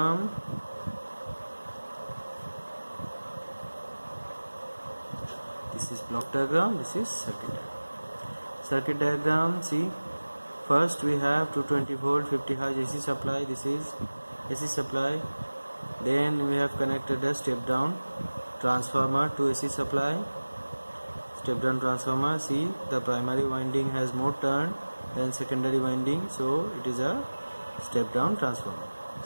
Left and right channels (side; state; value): both; inverted; correlation -1.00